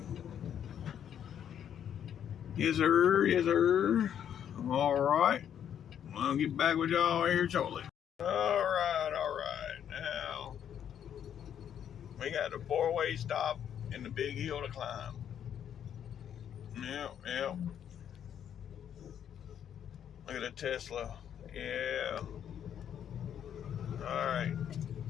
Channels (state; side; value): quieter; right; 9.3 dB